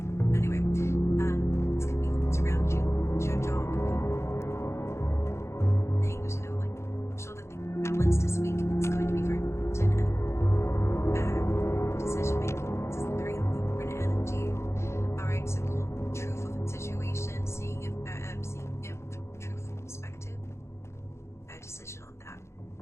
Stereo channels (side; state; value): right; late; 0.13 ms